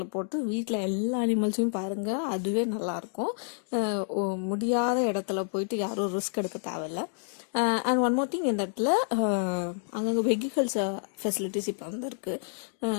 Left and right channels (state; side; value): silent; right; digital silence